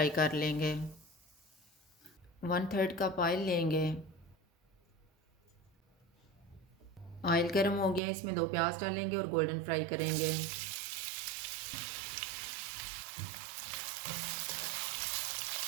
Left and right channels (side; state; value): left; drops out; at 8.0 s